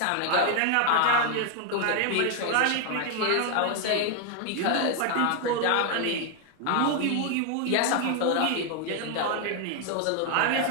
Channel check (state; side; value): different; both; correlation 0.00